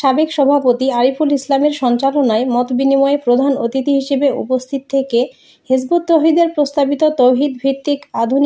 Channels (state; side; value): identical; both; correlation 1.00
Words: সভাপতি আরিফুল ইসলামের সঞ্চালনায় মতবিনিময়ে প্রধান অতিথি হিসেবে উপস্থিত থেকে হিজবুত তৌহিদের প্রস্তাবিত তৌহিদ ভিত্তিক